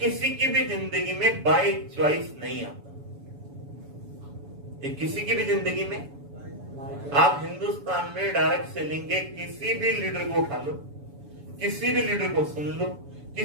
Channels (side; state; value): left; late; 7.0 ms